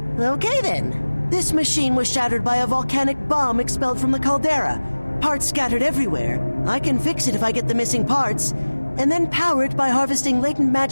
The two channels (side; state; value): both; inverted; correlation -1.00